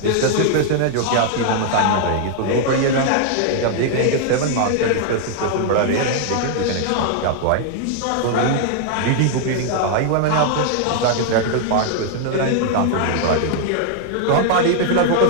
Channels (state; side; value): different; both; correlation 0.00